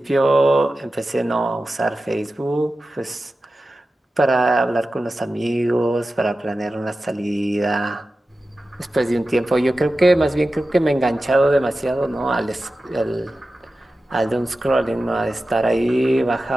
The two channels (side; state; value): both; normal; correlation 0.94